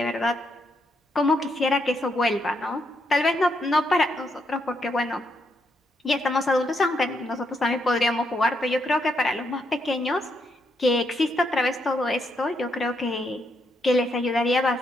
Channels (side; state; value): both; normal; correlation 0.78